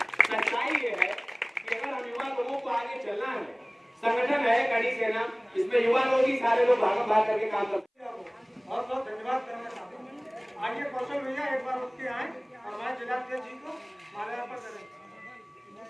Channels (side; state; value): both; identical; correlation 1.00